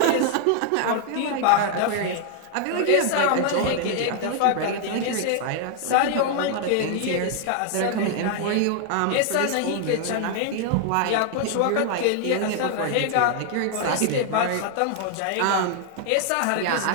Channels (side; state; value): both; different; correlation 0.00